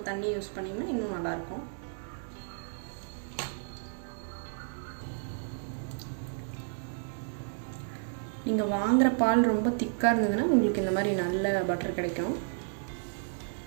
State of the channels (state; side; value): silent; left; digital silence